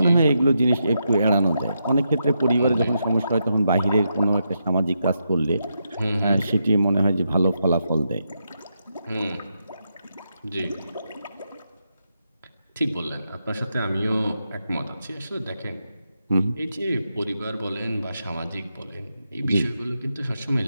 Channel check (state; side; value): inverted; both; correlation -0.84